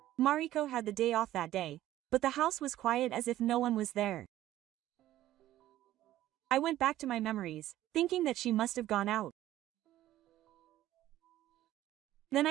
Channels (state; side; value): quieter; left; 13.9 dB